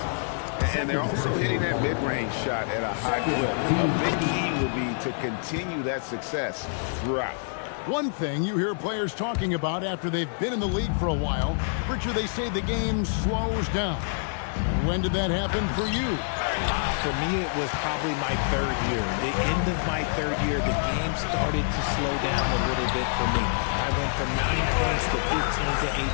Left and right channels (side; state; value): right; silent; digital silence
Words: And they're also hitting that mid-range shot at a high clip. A big key will be to continue that success throughout. One thing you hear players talking about after they've been in the league for a while, Richard, they say the game slows down. When did that happen for you? For me, it was probably my third year. The end of my third year, the game started to slow down a little bit for me. I went from 9 points to 15 to